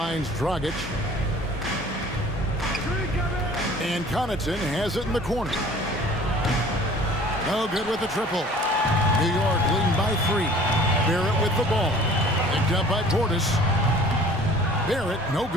Dragic. And Connaughton has it in the corner. No good with the triple. New York leading by 3. Barrett with the ball. Picked up by Portis. Barrett, no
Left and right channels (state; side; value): normal; both; correlation 0.48